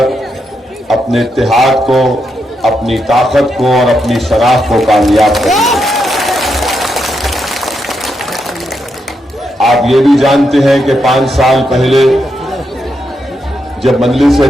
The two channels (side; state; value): both; normal; correlation 0.82